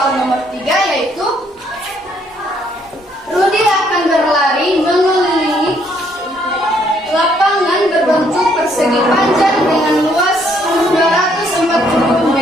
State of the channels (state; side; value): normal; both; correlation 0.68